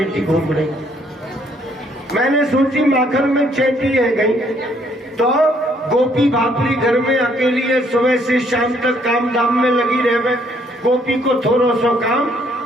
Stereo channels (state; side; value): normal; both; correlation 0.67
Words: घूम रही। मैंने सोची माखन में चेटी है गई, तो गोपी भापरी घर में अकेली है, सुबह से शाम तक काम धाम में लगी रहे, गोपी को थोड़ा सो